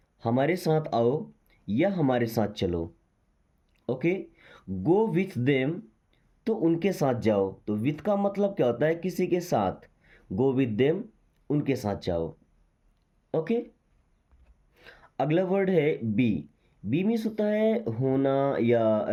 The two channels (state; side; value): identical; both; correlation 1.00